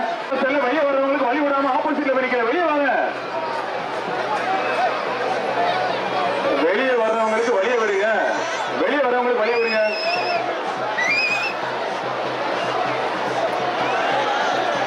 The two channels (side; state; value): both; identical; correlation 1.00